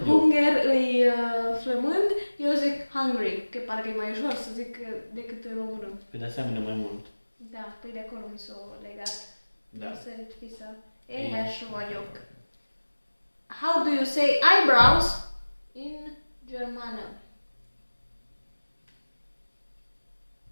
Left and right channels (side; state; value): both; inverted; correlation -1.00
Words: e flămând, eu zic hungry, că parcă e mai ușor să zic decât în română. Pe de asemenea mai mult. Da, păi de acolo mi s-o legat. Da. Sărit fisa. Éhes vagyok. How do you say eyebrows in germană?